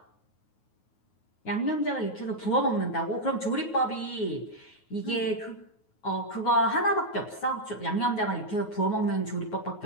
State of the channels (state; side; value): late; right; 9.4 ms